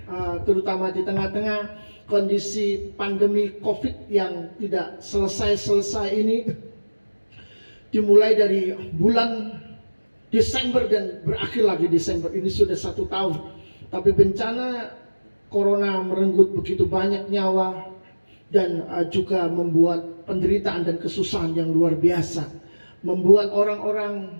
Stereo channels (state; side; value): inverted; both; correlation -1.00